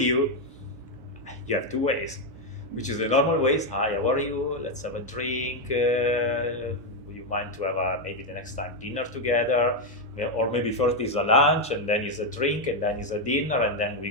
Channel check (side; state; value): both; normal; correlation 0.04